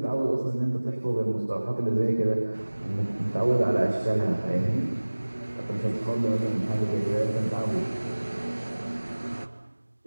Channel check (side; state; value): both; inverted; correlation -1.00